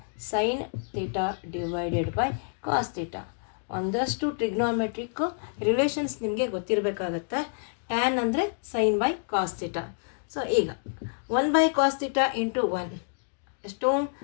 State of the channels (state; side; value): silent; right; digital silence